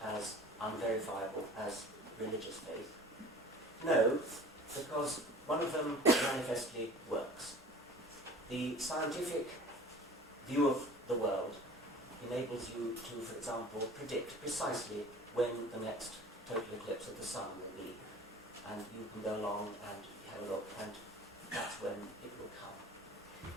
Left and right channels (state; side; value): normal; both; correlation 0.43